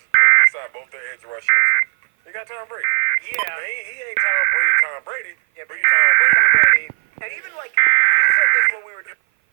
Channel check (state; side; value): silent; left; 58 dB below the other